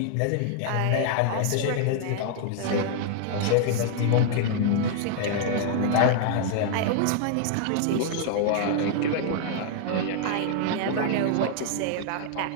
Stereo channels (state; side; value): different; both; correlation -0.01